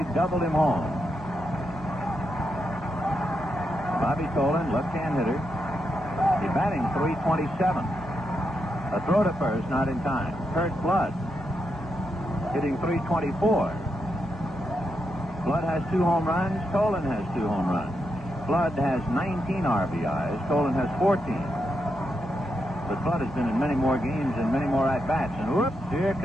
doubled him home. Bobby Tolan, left-hand hitter. He's batting .327. A throw to first, not in time. Kurt Flood hitting .324. Flood has 2 home runs. Tolan has 2 home runs. Flood has 19 RBIs. Tolan has 14. But Flood has been in many more games and many more at-bats. And whoops, here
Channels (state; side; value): normal; both; correlation 0.84